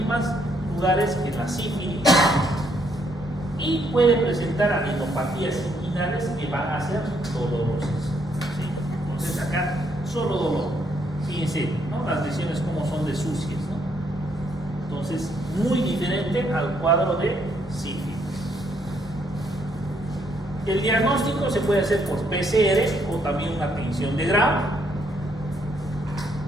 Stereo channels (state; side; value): normal; both; correlation 0.72